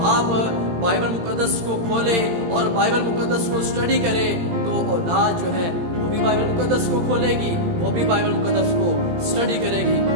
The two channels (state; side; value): late; left; 18 ms